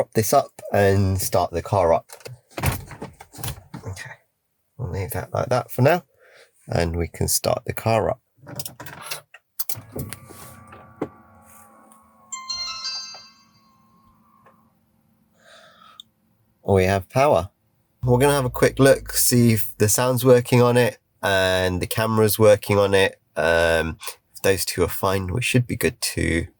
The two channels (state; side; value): identical; both; correlation 1.00